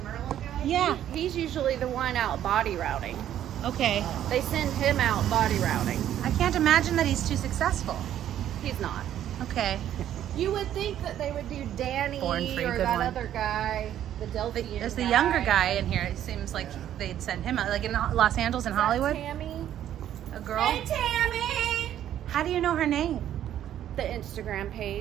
Merlin guy, Yeah. he's usually the one out body routing. Okay. They send him out body routing. I can't imagine that he's too successful. He's not. Okay. You would think that they would do Danny Born Free, or good that one. other guy, the Delphian There's the younger guy in here. It seems like they'd send him out, like in Los Angeles and Hollywood. Tammy? A girl. Hey, Tammy! How do you know her name? The Instagram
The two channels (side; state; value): left; quieter; 11.2 dB